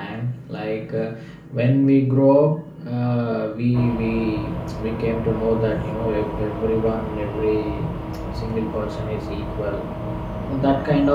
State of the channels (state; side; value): identical; both; correlation 1.00